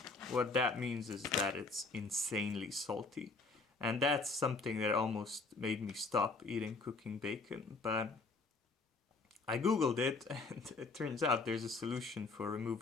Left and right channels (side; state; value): right; quieter; 3.7 dB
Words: what that means is that it's insanely salty. And that's something that almost made me stop eating cooking bacon. But I googled it, and it turns out there's a solution for